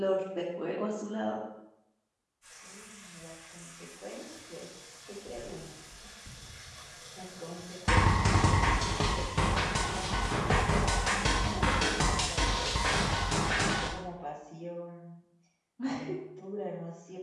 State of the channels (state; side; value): identical; both; correlation 1.00